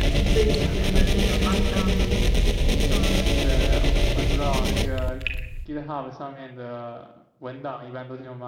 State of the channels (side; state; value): both; identical; correlation 1.00